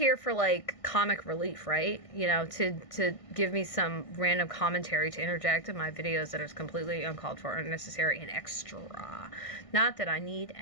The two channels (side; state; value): right; late; 1.6 ms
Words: for like comic relief, right? You know, to give me some random commentary to interject in my videos that is completely uncalled for, unnecessary, and extra. Not that I need